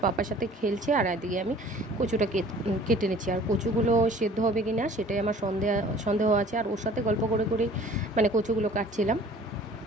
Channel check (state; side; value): normal; both; correlation 0.50